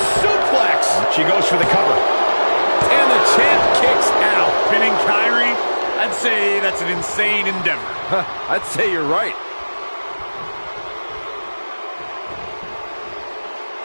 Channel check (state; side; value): inverted; both; correlation -1.00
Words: suplex. She goes for the cover. And the champ kicks out. Pinning Kyrie, I'd say that's an insane endeavor. I'd say you're right.